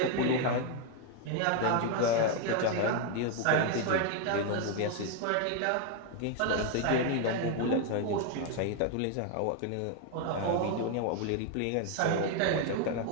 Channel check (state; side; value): different; both; correlation 0.01